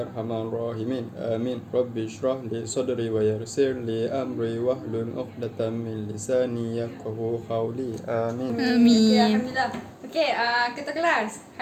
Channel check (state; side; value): identical; both; correlation 1.00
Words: rahimin. Amin. Rabbi shrah li sadri wa yassir li amri wahlul 'uqdatam min lisani yafqahu qawli. Amin. Okey, alhamdulillah. Okey, ketua kelas.